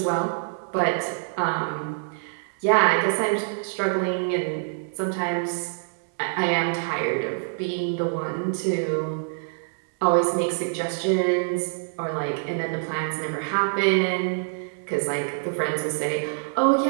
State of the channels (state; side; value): silent; left; digital silence